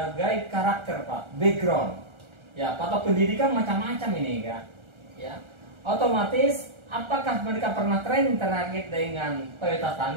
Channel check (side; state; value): left; late; 1.4 ms